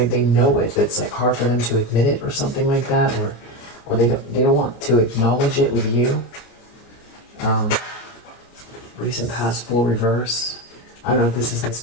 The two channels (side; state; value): right; late; 26 ms